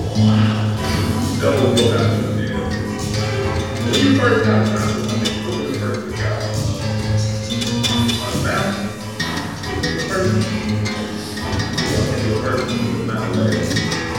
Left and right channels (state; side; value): identical; both; correlation 1.00